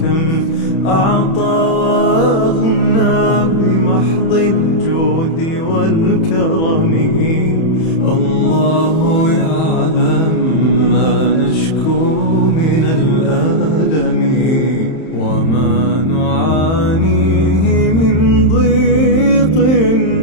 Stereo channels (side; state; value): right; late; 31 ms